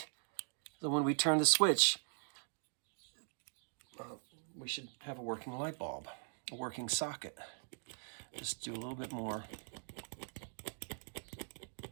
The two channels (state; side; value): silent; left; digital silence